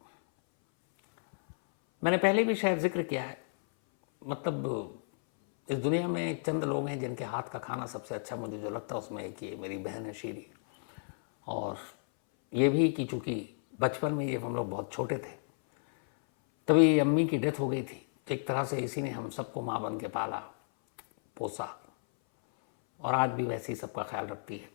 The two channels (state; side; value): silent; right; 56 dB below the other